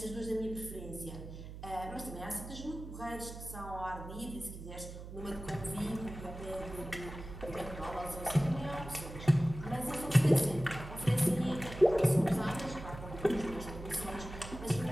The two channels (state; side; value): noise; right; hum, 11 dB below the sound